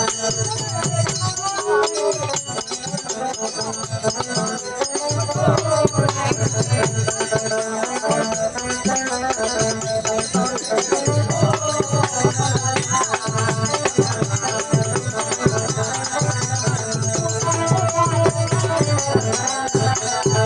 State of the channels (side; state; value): both; identical; correlation 1.00